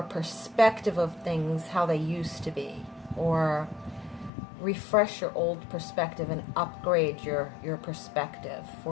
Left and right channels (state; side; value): drops out; right; at 4.3 s